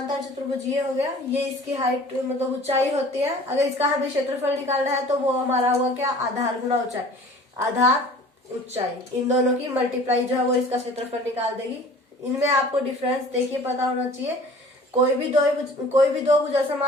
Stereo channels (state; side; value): normal; both; correlation 0.46